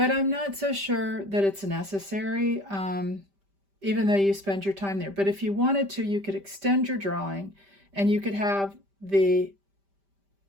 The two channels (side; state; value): left; late; 5.1 ms